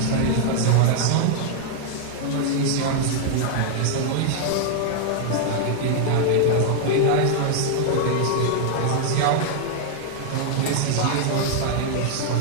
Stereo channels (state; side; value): different; both; correlation -0.01